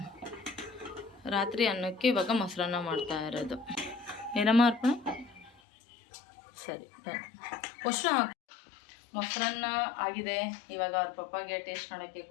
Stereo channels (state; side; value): drops out; right; at 5.5 s